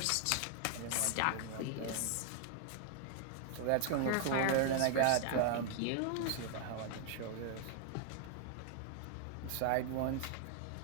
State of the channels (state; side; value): different; both; correlation 0.00